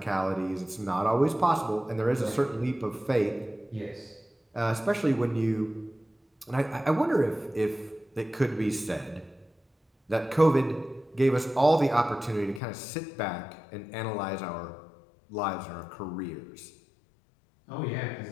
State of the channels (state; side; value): drops out; right; at 12.6 s